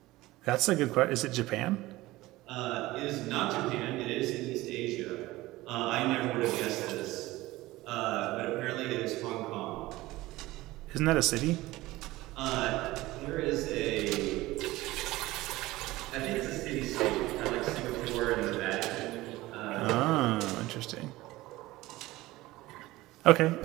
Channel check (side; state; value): left; quieter; 18.4 dB